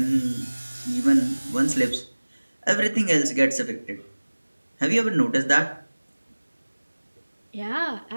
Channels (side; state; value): both; inverted; correlation -1.00